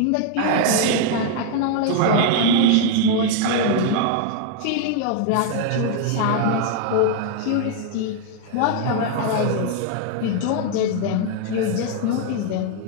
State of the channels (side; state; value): both; different; correlation 0.00